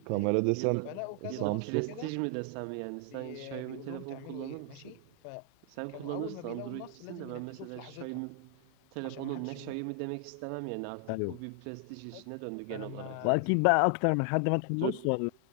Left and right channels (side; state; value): both; different; correlation 0.00